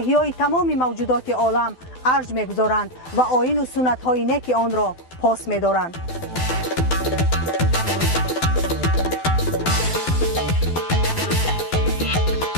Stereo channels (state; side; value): late; right; 12 ms